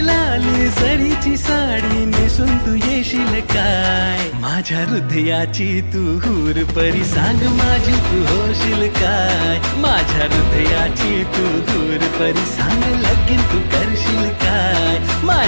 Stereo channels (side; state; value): both; inverted; correlation -1.00